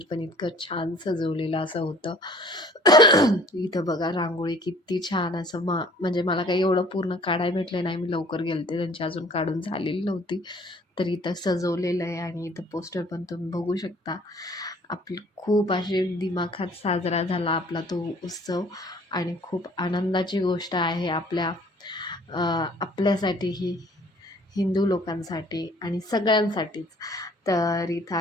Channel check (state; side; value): normal; both; correlation 0.54